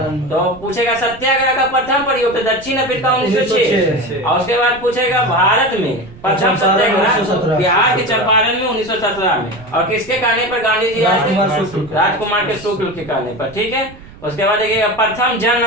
तो पूछेगा सत्याग्रह का प्रथम प्रयोग तो दक्षिण अफ्रीका 1906। और उसके बाद पूछेगा भारत में प्रथम सत्याग्रह बिहार के चंपारण में 1917 में। और किसके कहने पर गांधी जी आए? राजकुमार के शुक्ल के कहने पर, ठीक है। उसके बाद देखिएगा प्रथम जन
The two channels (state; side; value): noise; right; rumble, 20 dB below the sound